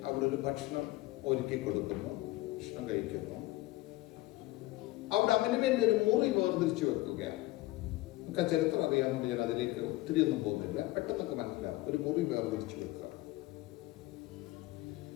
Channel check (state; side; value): quieter; right; 18.7 dB